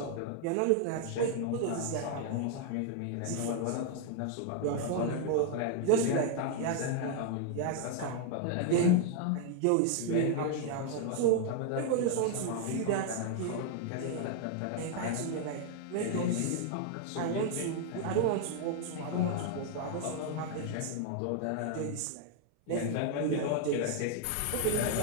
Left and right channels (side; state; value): both; different; correlation 0.00